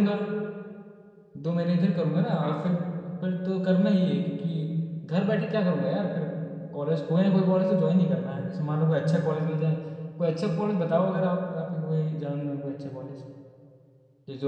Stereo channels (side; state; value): both; identical; correlation 1.00